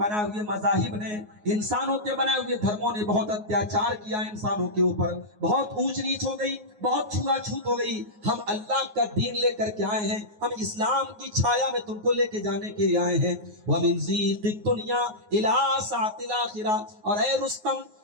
ہوئے مذاہب نے، انسانوں کے بنائے ہوئے دھرموں نے بہت اتیاچار کیا انسانوں کے اوپر، بہت اونچ نیچ ہو گئی، بہت چھوا چھوت ہو گئی. ہم اللہ کا دین لے کر کے آئے ہیں، ہم اسلام کی چھایا میں تم کو لے کے جانے کے لیے آئے ہیں. وَمِن ضِيقِ الدُّنْيَا إِلَىٰ سَعَةِ الْآخِرَةِ. اور اے رستم،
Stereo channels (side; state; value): left; late; 9.5 ms